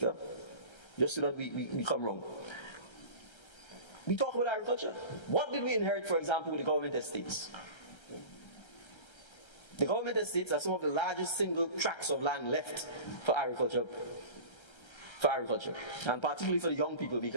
just so that we come wrong. We talk about agriculture. What did we inherit, for example, with the government estates? The government estates are some of the largest single tracts of land left for agriculture. And particularly for the young people,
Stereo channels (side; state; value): right; late; 1.3 ms